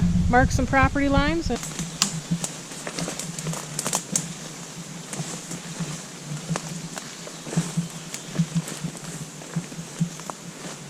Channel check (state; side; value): identical; both; correlation 1.00